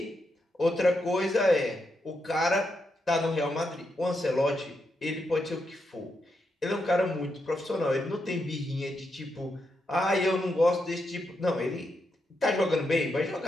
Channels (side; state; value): both; normal; correlation 0.83